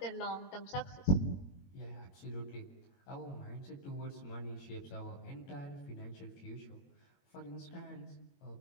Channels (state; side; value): late; right; 22 ms